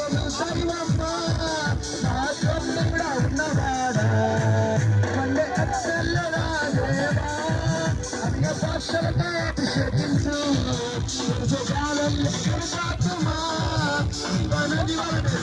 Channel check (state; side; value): identical; both; correlation 1.00